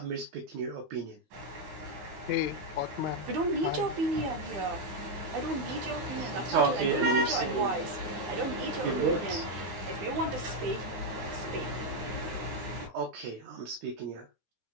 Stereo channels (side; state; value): left; late; 9.4 ms